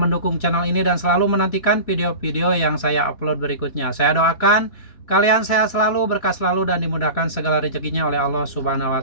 channel ini, dan selalu menantikan video-video yang saya upload berikutnya. Saya doakan kalian sehat selalu, berkah selalu, dan dimudahkan segala rezekinya oleh Allah Subhanahu wa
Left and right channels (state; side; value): late; right; 3.0 ms